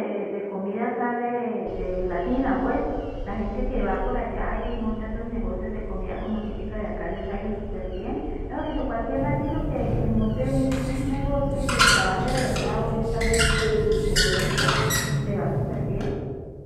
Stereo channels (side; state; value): both; identical; correlation 1.00